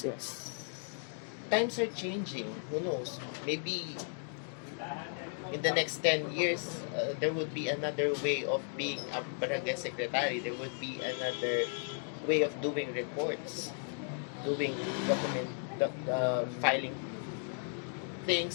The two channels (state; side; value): silent; right; 54 dB below the other